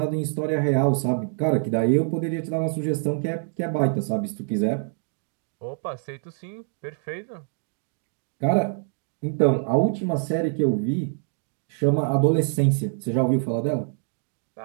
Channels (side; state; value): left; silent; 57 dB below the other